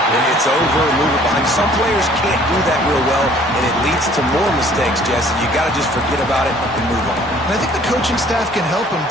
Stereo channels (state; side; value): normal; both; correlation 0.56